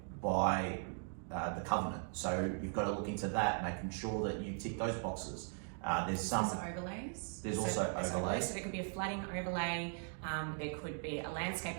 by the covenant. So you've got to look into that, making sure that you tick those boxes. There's overlays. There's also overlays. So there could be a flooding overlay, there could be a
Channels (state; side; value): silent; left; 52 dB below the other